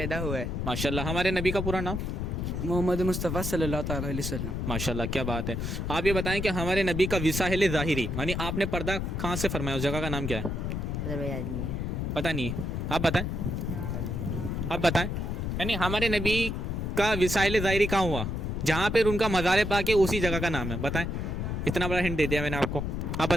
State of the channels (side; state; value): left; noise; rumble, 2 dB below the sound